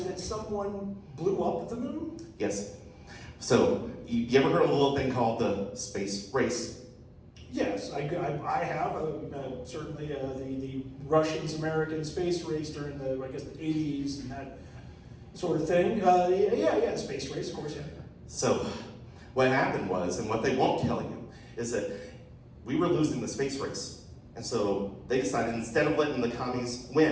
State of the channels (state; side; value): identical; both; correlation 1.00